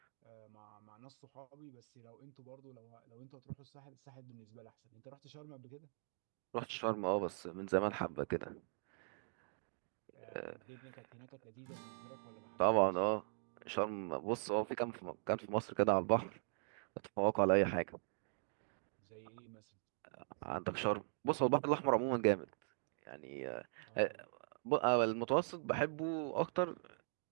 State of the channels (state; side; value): silent; left; digital silence